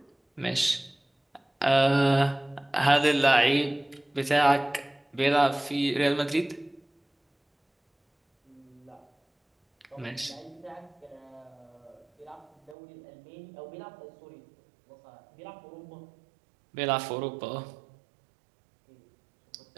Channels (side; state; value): left; drops out; at 12.8 s